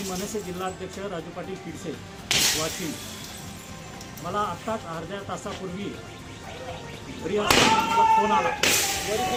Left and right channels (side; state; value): both; identical; correlation 1.00